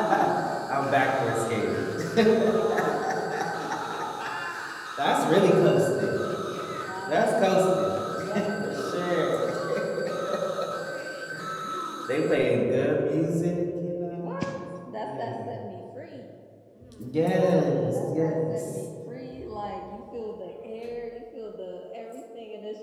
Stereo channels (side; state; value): both; identical; correlation 1.00